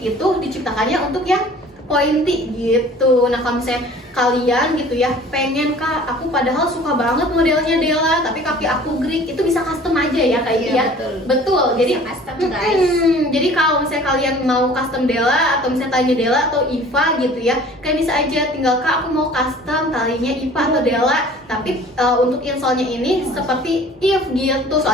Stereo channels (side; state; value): both; normal; correlation 0.48